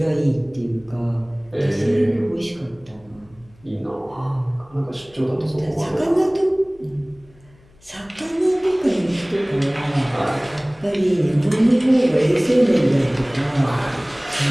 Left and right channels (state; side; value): noise; left; hum, 29 dB below the sound